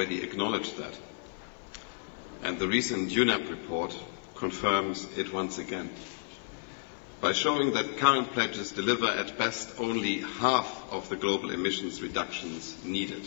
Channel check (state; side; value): silent; right; 57 dB below the other